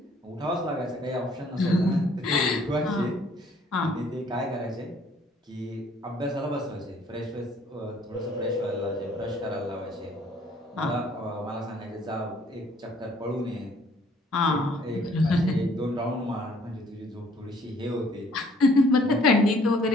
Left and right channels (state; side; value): normal; both; correlation 0.60